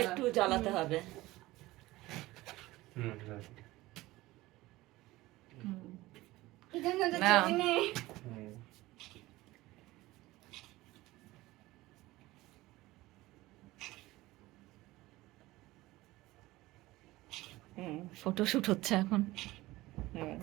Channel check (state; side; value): quieter; left; 18.5 dB